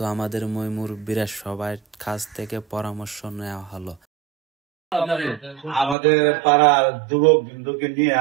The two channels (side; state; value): left; drops out; at 6.0 s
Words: আমাদের মুরব্বীরা সবার কাছ থেকে পরামর্শ নেওয়া হলো। আমাদের পাড়ার যুবক বিন্দুকে